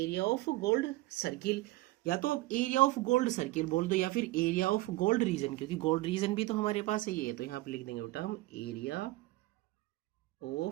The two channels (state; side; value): quieter; left; 19.0 dB